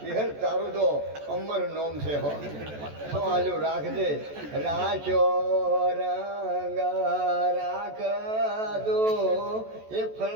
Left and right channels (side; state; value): left; late; 14 ms